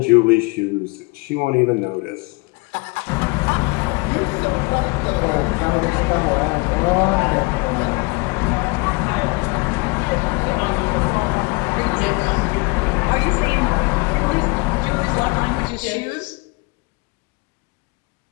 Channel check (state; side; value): quieter; right; 27.7 dB